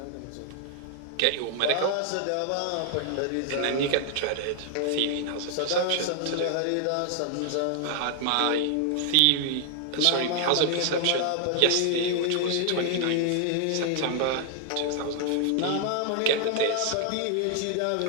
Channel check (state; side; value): different; both; correlation 0.00